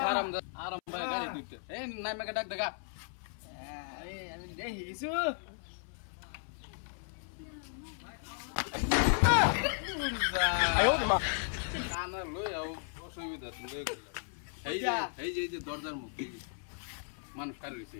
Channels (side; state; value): right; silent; 54 dB below the other